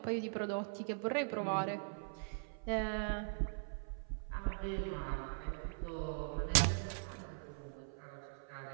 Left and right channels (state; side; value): silent; left; 50 dB below the other